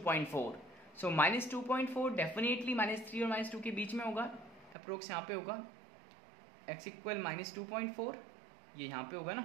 सो -2.4 डेफिनेटली -3 और -2 के बीच में होगा. अप्रोक्स यहाँ पे होगा. x इक्वल -2.4, ये यहाँ पे होगा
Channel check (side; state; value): left; drops out; at 4.8 s